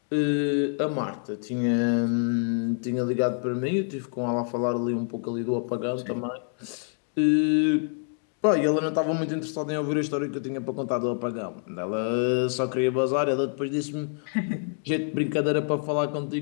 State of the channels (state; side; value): silent; right; 60 dB below the other